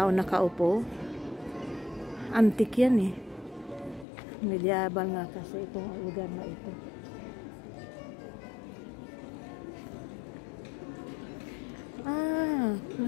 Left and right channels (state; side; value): drops out; right; at 4.0 s